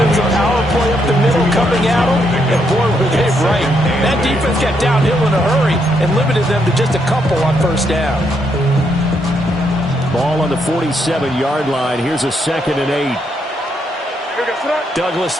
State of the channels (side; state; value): both; normal; correlation 0.77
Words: was a power play up the middle coming at them, and boy, were they right. That defense got downhill in a hurry and limited them to just a couple on 1st down. Ball on the 47-yard line. Here's a 2nd and 8. Douglas,